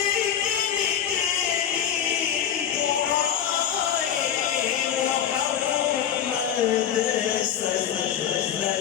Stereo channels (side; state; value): right; quieter; 9.3 dB